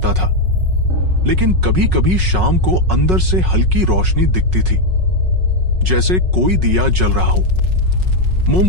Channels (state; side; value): late; left; 5.4 ms